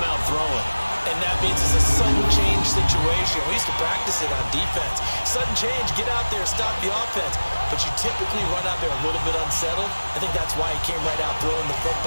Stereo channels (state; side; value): inverted; both; correlation -1.00